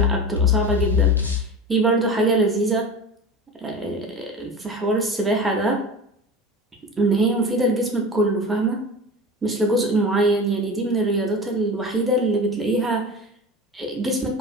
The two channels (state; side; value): normal; both; correlation 0.31